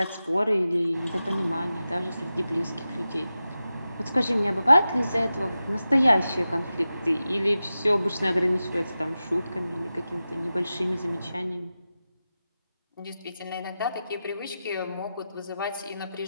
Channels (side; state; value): both; inverted; correlation -0.93